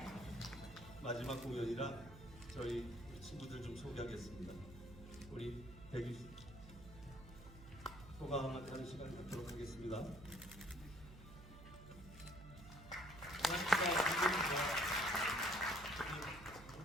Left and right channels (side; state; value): right; noise; hum, 16 dB below the sound